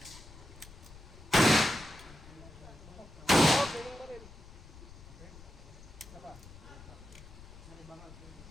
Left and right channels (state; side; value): noise; left; rumble, 18 dB below the sound